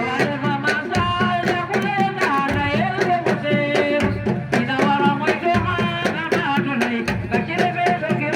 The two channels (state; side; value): identical; both; correlation 1.00